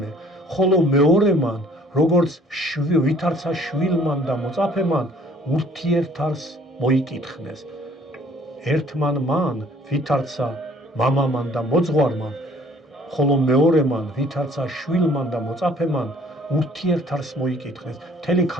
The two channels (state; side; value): normal; both; correlation 0.56